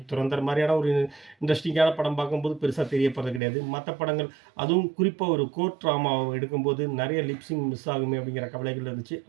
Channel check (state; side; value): drops out; left; at 3.4 s